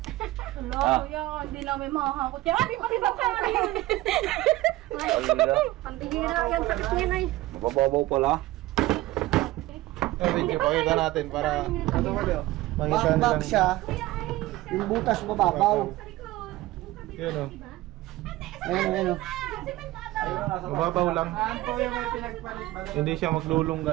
Hello, Ah. kuya. Hindi namin makakakot yan. Ay, pati ba ka yun? Alala. Ang bihira yan, sakit niya na eh. Mababaw pala. Video, pakita natin para Ito ba daw? makita Back nilang. siya. Yung butas mababaw. Yun o. Ayun o. Mababaw lang. Saan po yung may pinagpalit? Hindi siya maglulungga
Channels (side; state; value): left; quieter; 17.7 dB